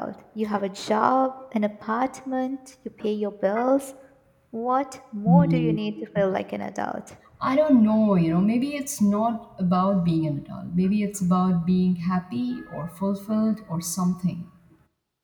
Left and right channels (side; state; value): both; identical; correlation 1.00